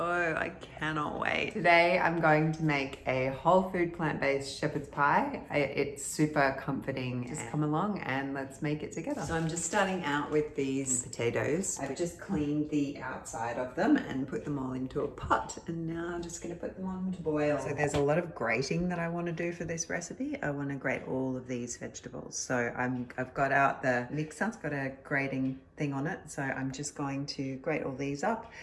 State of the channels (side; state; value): both; identical; correlation 1.00